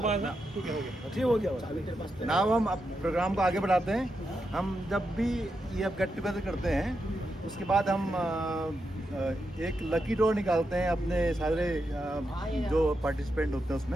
ठीक हो गया चाबी तेरे पास। ना हम अब प्रोग्राम को आगे बढ़ाते हैं। हम जब भी ये गेट टुगेदर करते हैं उसके बाद हम एक लकी ड्रॉ निकालते हैं अपने सारे जो पार्टिसिपेंट होते हैं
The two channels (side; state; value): both; normal; correlation 0.86